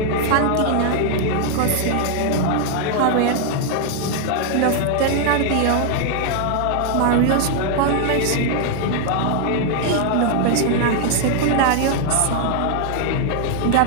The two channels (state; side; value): different; both; correlation 0.00